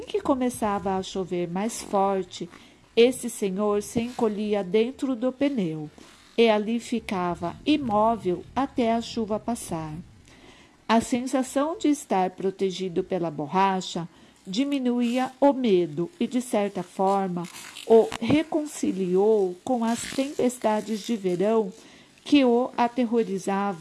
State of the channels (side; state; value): both; identical; correlation 1.00